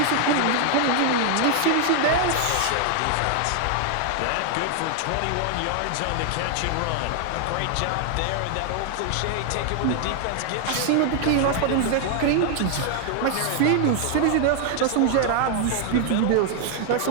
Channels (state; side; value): different; both; correlation 0.00